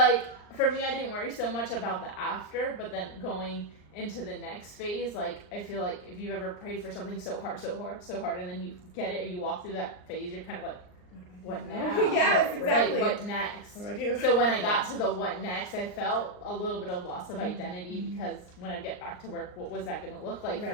for me, I didn't worry so much about the after, but then going into the next phase, like, I feel like if you've ever prayed for something so hard, and then you get it, or you walk through that phase, you're kind of like, what now? Yes, exactly. Like, what next? What do I do? So when I got to the what next, I felt a little bit of loss of identity because when I get back to work, what was that going to look like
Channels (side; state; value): right; late; 39 ms